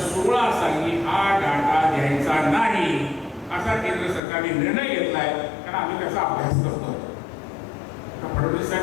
साली हा डाटा द्यायचा नाही असा केंद्र सरकारने निर्णय घेतलाय, कारण आम्ही त्याचा अभ्यास करतो. फडणवीस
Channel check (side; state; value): right; drops out; at 4.2 s